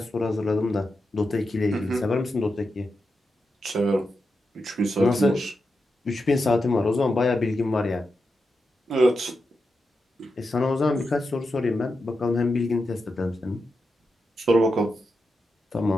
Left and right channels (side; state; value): both; normal; correlation 0.88